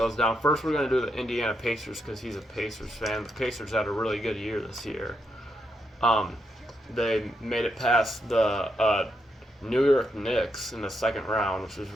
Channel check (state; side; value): normal; both; correlation 0.81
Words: down. First, we're going to do the Indiana Pacers because he's a Pacers fan. The Pacers had a really good year this year. Um, they made it past the New York Knicks in the second round, which was